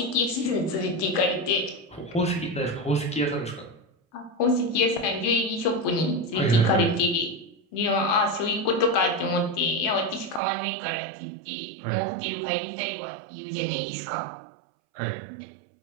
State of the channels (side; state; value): left; drops out; at 10.4 s